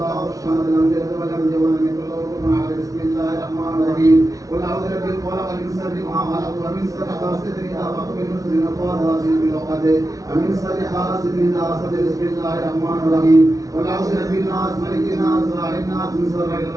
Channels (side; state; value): left; late; 0.17 ms